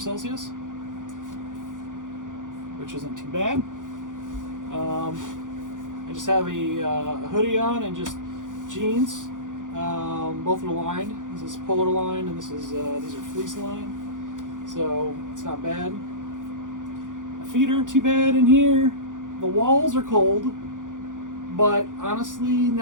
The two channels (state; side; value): late; left; 0.88 ms